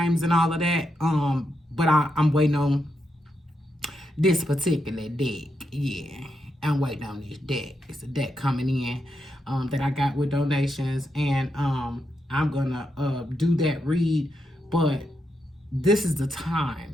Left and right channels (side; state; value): both; normal; correlation 0.83